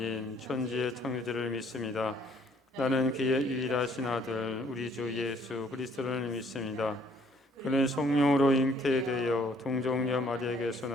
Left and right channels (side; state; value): both; normal; correlation 0.62